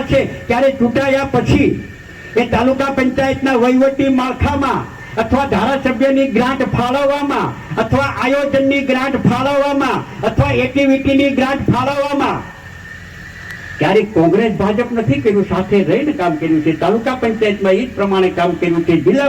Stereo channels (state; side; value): identical; both; correlation 1.00